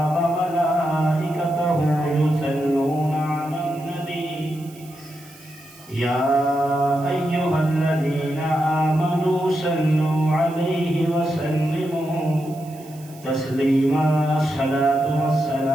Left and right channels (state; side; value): noise; right; hiss, 23 dB below the sound